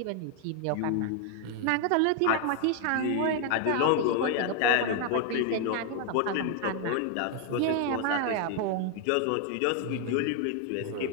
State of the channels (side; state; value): both; different; correlation 0.00